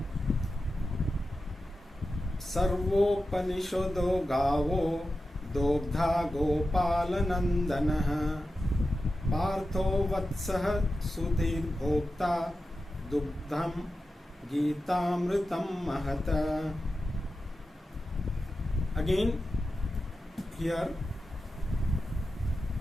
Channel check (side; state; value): both; normal; correlation 0.92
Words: Sarvopanishado gavo dobdha gopalanandanaha partho vatsah sudhir bhokta dugdham gitamritam mahata. Again, here